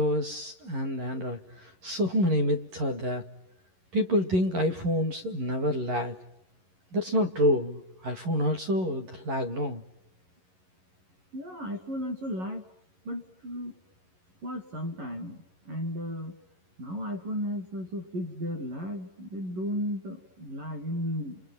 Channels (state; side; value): late; left; 11 ms